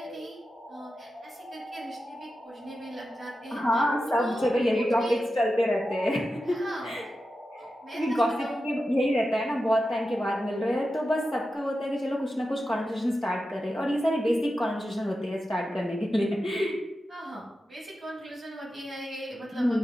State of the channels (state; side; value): normal; both; correlation 0.91